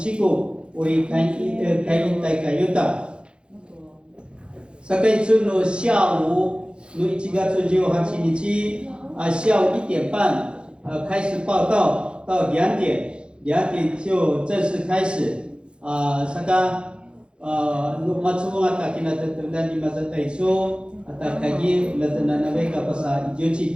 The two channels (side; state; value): left; late; 0.054 ms